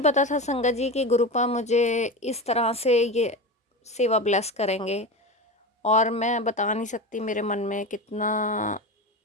था संगत जी कि गुरुपा मुझे इस तरह से ये सेवा ब्लेस करेंगे, और मैं बता नहीं सकती मेरे मन में कितना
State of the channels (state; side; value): normal; both; correlation 0.24